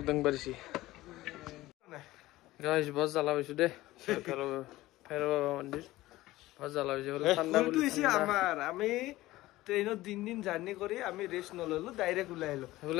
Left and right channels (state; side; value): quieter; right; 17.4 dB